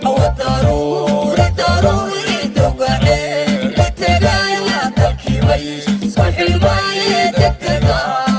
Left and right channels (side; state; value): both; identical; correlation 1.00